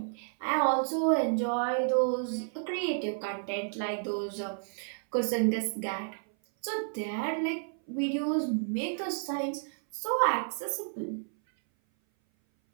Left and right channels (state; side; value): silent; left; 57 dB below the other